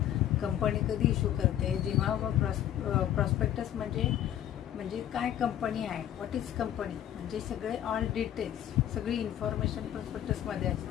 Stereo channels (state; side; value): quieter; right; 11.3 dB